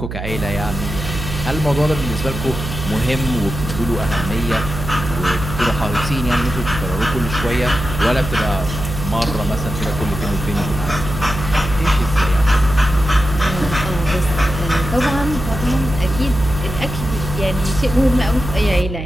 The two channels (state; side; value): noise; right; hum, 7 dB below the sound